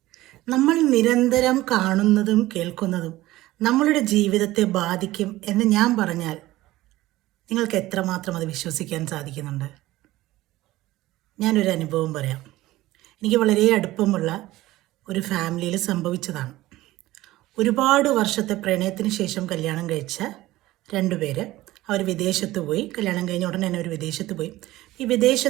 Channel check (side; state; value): left; quieter; 17.0 dB